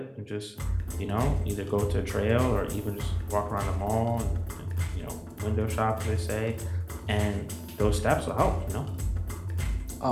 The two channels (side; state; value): both; identical; correlation 1.00